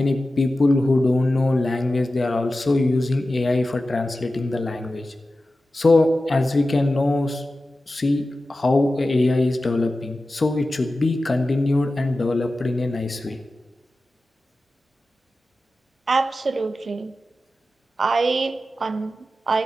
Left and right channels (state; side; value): normal; both; correlation 0.94